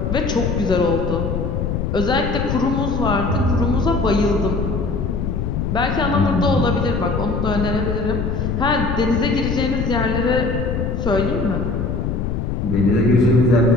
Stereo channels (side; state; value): left; noise; rumble, 2 dB below the sound